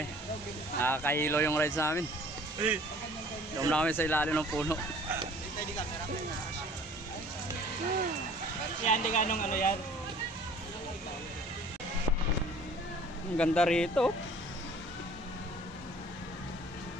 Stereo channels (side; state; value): both; normal; correlation 0.50